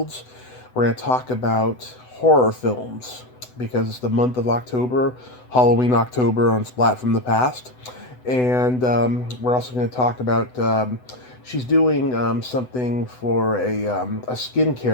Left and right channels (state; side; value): late; right; 8.0 ms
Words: We're going to talk about horror films because it's the month of October, Halloween October on Splat from the Past. And we're also going to talk about she's doing something for a